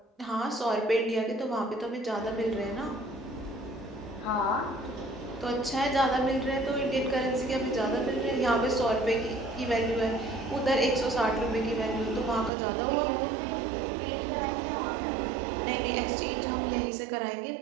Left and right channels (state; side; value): drops out; left; at 12.5 s